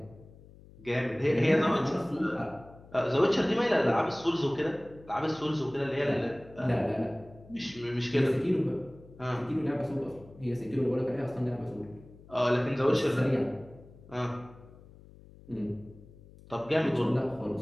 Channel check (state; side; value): noise; left; hum, 22 dB below the sound